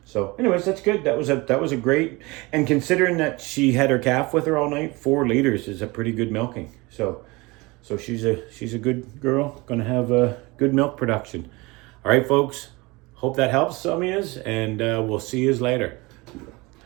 So anyways, that's good. That was a great, and considering that she had her calf with her all night, 4 liters is a pretty good milking. So she's a good girl, gonna have a good milk production. All right, folks, hope that helps some of yous, and we'll see yous later.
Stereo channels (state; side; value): quieter; left; 24.0 dB